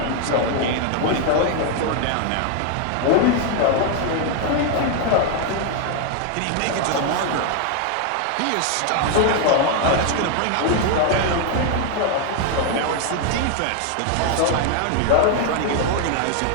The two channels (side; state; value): both; different; correlation 0.00